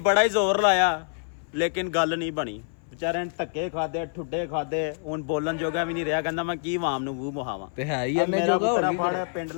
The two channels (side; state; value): right; silent; 58 dB below the other